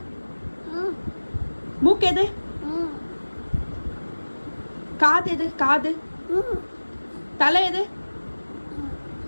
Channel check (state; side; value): inverted; both; correlation -1.00